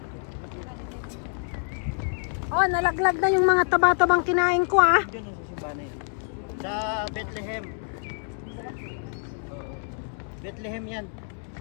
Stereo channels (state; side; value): silent; right; 60 dB below the other